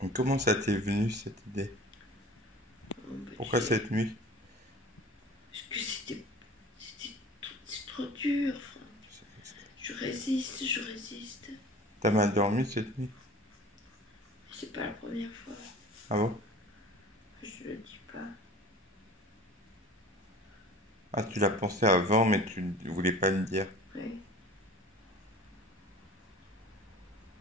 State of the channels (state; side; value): normal; both; correlation 0.43